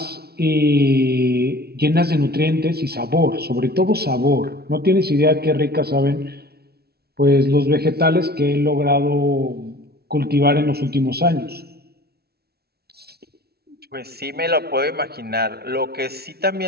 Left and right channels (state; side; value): late; left; 0.46 ms